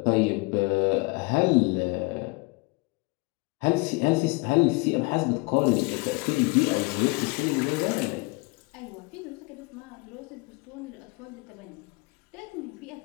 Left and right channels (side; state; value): right; quieter; 26.5 dB